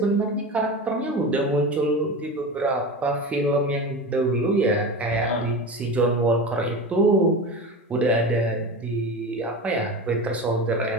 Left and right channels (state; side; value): normal; both; correlation 0.27